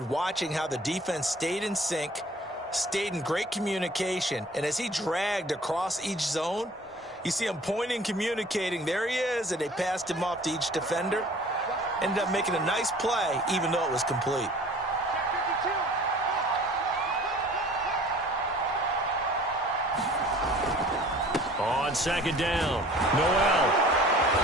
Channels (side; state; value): both; normal; correlation 0.49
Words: watching how the defense stayed in sync, stayed in great communication. And as he dragged across each zone, you see him pointing, communicating. There he is, and they passed him off to each defender. Ended up making a nice play, even though it was complete. On second down, Noel.